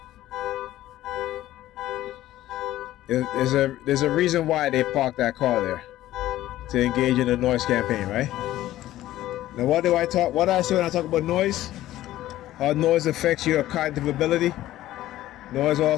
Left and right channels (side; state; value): right; quieter; 14.6 dB